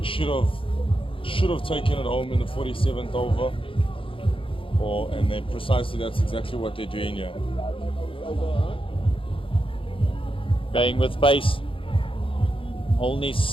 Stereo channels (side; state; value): right; late; 0.26 ms